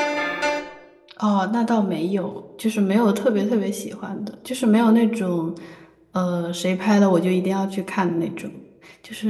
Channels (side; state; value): both; identical; correlation 1.00